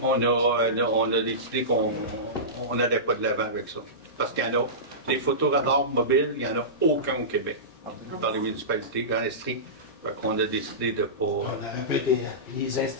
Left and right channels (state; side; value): normal; both; correlation -0.20